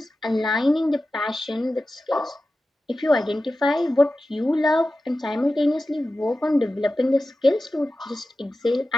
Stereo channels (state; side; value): normal; both; correlation 0.94